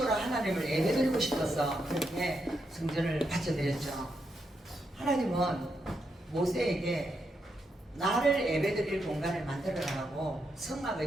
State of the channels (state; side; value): normal; both; correlation 0.82